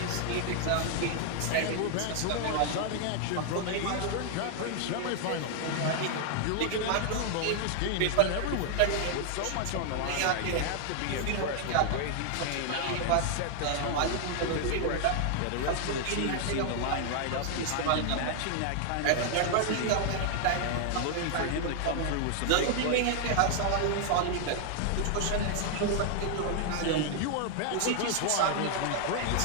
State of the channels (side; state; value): both; different; correlation 0.00